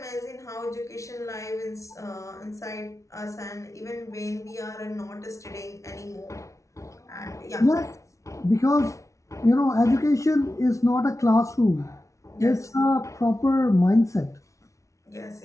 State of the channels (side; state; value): right; late; 0.15 ms